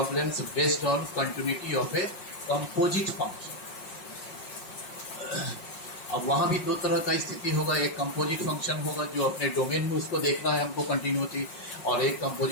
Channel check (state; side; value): late; right; 5.5 ms